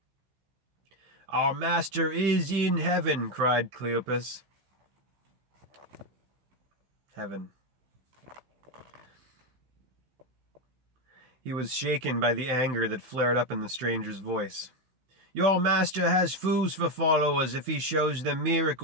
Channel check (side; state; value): left; late; 15 ms